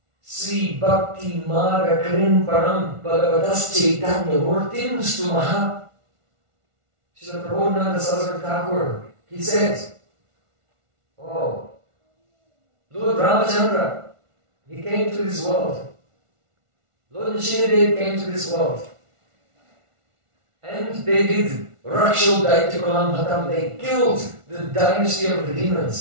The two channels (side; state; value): left; late; 1.4 ms